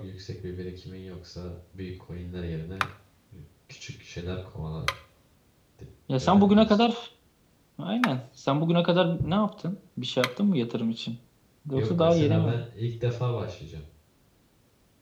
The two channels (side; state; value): both; identical; correlation 1.00